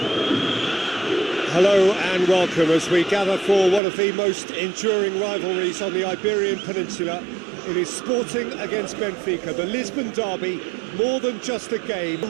Hello and welcome as we gather for one of the most enduring rivalries on the Iberian Peninsula. It is Sporting against Benfica, the Lisbon derby, more than just a game.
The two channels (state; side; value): drops out; left; at 3.8 s